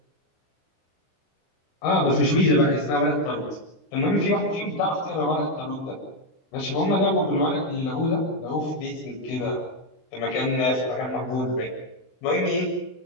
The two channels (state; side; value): late; right; 19 ms